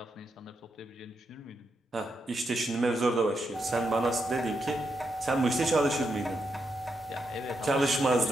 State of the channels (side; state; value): both; normal; correlation 0.83